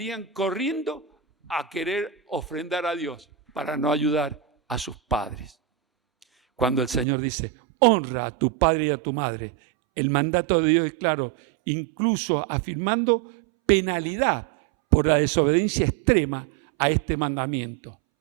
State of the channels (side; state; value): left; drops out; at 7.1 s